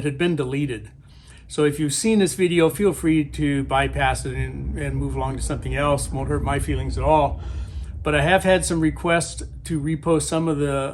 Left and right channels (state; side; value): identical; both; correlation 1.00